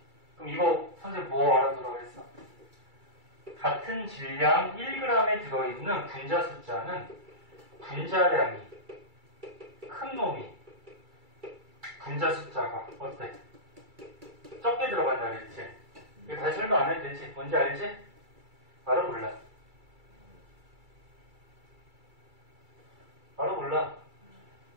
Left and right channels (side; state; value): left; late; 2.3 ms